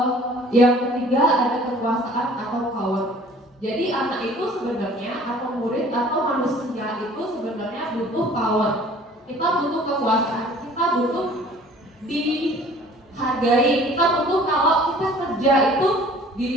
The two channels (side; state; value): both; normal; correlation 0.51